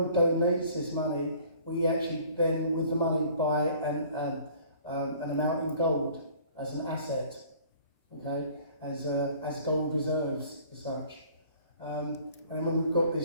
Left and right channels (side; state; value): both; inverted; correlation -0.52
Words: donates this money. We actually then, with the money, buy an amount in gold as an asset, okay? As gold reserves, as such. And when we've got